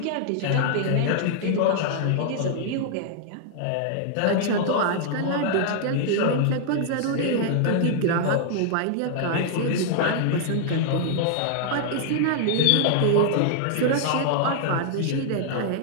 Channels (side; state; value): both; different; correlation -0.01